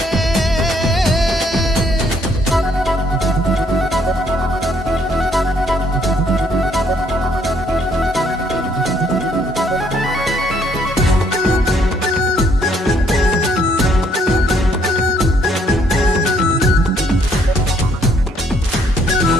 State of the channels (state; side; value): normal; both; correlation 0.67